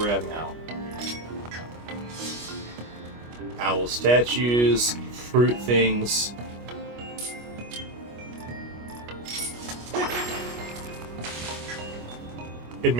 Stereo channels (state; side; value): late; left; 25 ms